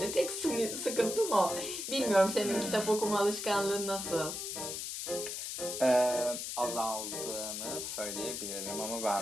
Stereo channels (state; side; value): noise; left; hiss, 5 dB below the sound